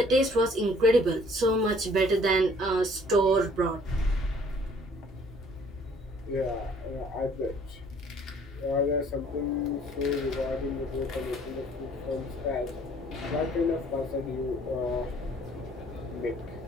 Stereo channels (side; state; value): both; normal; correlation 0.57